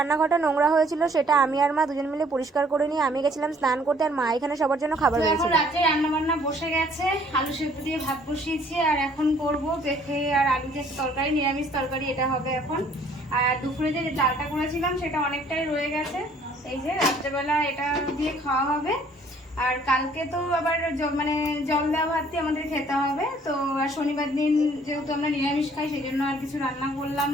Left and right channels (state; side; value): normal; both; correlation 0.59